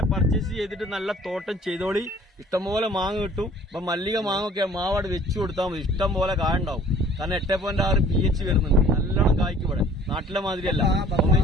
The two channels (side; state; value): both; normal; correlation 0.52